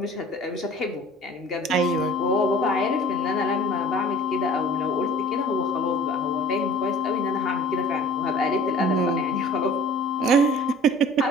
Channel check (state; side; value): normal; both; correlation 0.47